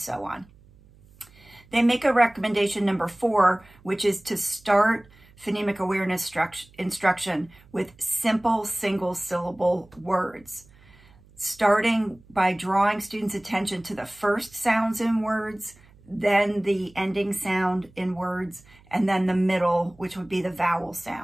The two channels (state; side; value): noise; right; hum, 27 dB below the sound